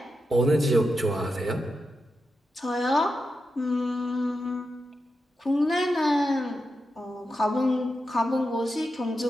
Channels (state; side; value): normal; both; correlation 0.88